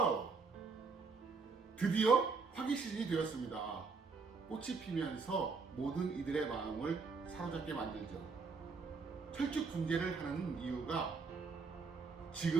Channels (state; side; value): quieter; left; 4.7 dB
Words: 드디어 화기 시즌이 되었습니다. 꽃이 피면서 모든 이들의 마음을 사로잡게 만들죠. 철쭉 분재를 하는 이유가